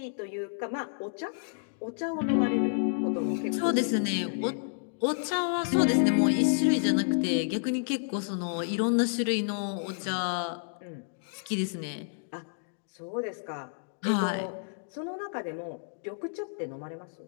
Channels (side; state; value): right; silent; digital silence